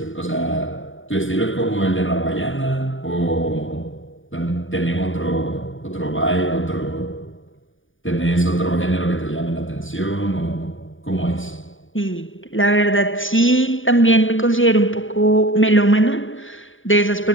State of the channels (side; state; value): right; late; 0.57 ms